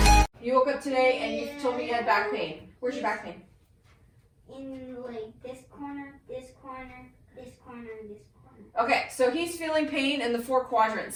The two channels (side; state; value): both; identical; correlation 1.00